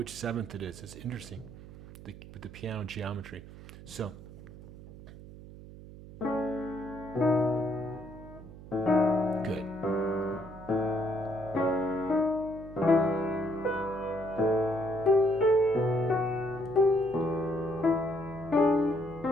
7th it is. It's interesting with the piano geometry. So good.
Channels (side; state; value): right; noise; hum, 16 dB below the sound